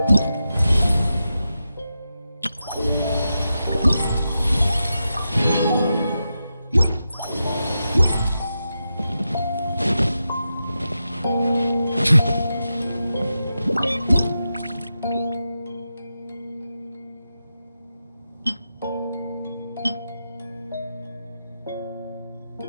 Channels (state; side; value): inverted; both; correlation -0.89